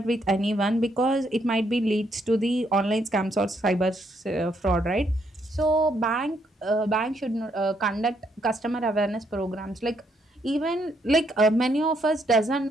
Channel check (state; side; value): normal; both; correlation 0.74